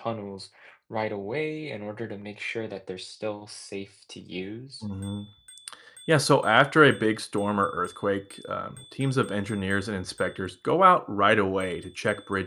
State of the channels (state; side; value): identical; both; correlation 1.00